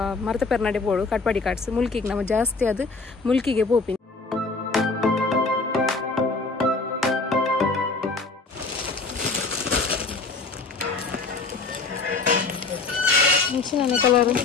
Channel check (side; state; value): right; quieter; 4.0 dB